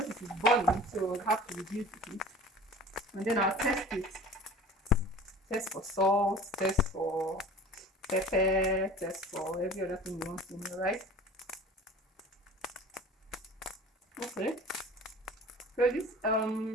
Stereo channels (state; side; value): normal; both; correlation 0.42